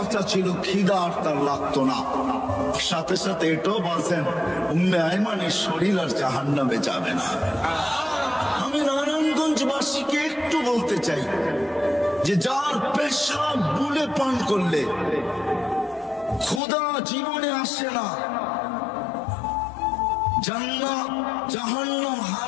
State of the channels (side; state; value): right; drops out; at 16.6 s